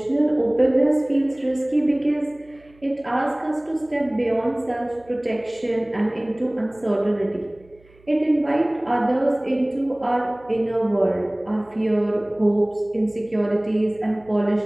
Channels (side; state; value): right; noise; hum, 29 dB below the sound